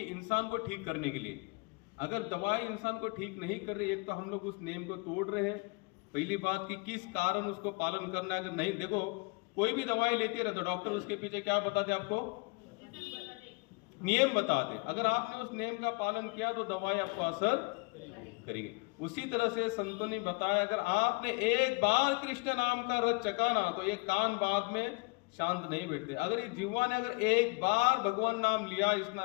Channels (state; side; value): quieter; right; 29.5 dB